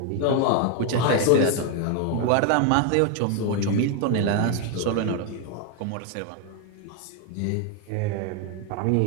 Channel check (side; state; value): both; different; correlation 0.01